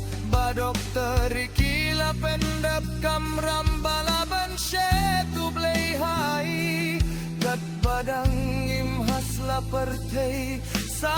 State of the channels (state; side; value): identical; both; correlation 1.00